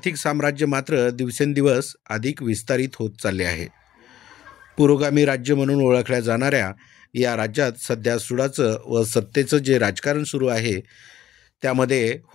साम्राज्य मात्र दिवसेंदिवस अधिक विस्तारित होत चालले आहे. पुरोगामी राज्य म्हणून ओळखल्या जाणाऱ्या या राज्यात सध्या सुडाचं व सत्तेचं जे राजकारण सुरू आहे त्यामध्ये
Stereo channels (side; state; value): right; quieter; 12.1 dB